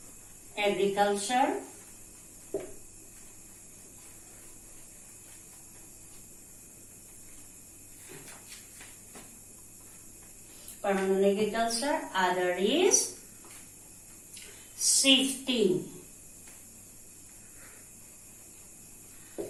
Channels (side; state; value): both; identical; correlation 1.00